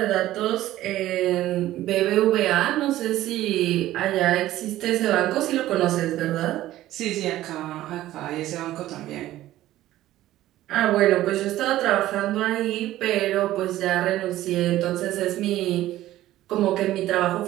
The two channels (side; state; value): left; quieter; 14.7 dB